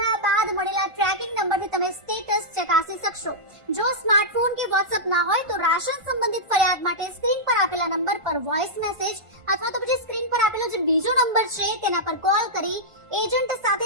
બાદ મળેલા ટ્રેકિંગ નંબરથી તમે સ્ટેટસ ચકાસી શકશો। જો સ્માર્ટફોન કે વોટ્સએપ ના હોય તો રાશન સંબંધિત ફરિયાદ માટે સ્ક્રીન પર આપેલા નંબર પર વોઇસ મેસેજ અથવા તો પછી સ્ક્રીન પર આપેલો જે બીજો નંબર છે તેના પર કોલ કરી એજન્ટ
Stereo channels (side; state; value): left; late; 1.5 ms